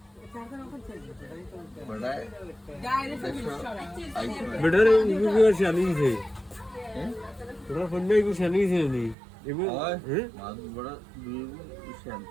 বেটার ইউনিভার্স জানিছে তোরা ফোন নাই কিছু জানিছে নি এগো হ্যাঁ বড় দুই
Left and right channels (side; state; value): left; drops out; at 9.2 s